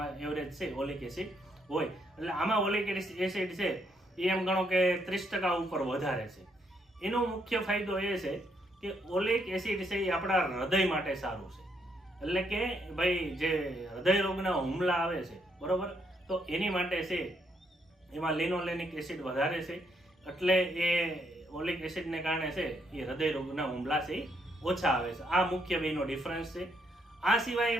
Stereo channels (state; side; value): normal; both; correlation 0.74